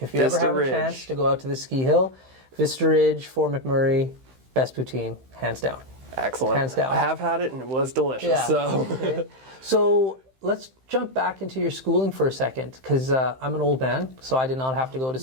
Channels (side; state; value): left; late; 15 ms